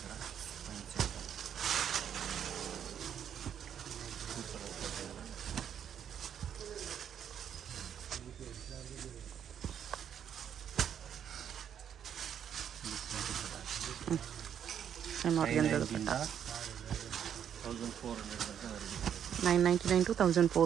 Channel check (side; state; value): left; quieter; 8.9 dB